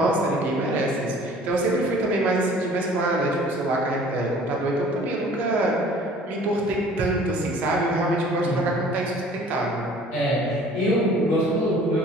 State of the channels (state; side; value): normal; both; correlation 0.51